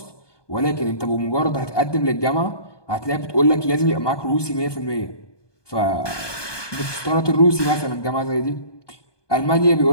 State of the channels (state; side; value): late; right; 1.2 ms